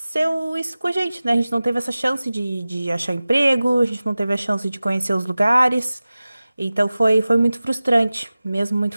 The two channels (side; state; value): both; inverted; correlation -0.97